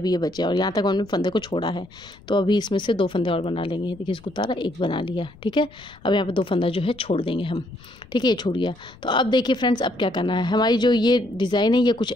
ये बचे और यहाँ तक हमने फंदे को छोड़ा है। तो अभी इसमें से 2 फंदे और बना लेंगे। देखिए इसको उतारा, एक बना लिया, ठीक है। अब यहाँ पे 2 फंदा जो है छोड़ देंगे हम, ठीक है। ये छूट गया। तो अब देखिए फ्रेंड्स अब क्या करना है, हमारी जो ये डिज़ाइन है ये कुछ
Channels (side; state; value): left; noise; rumble, 24 dB below the sound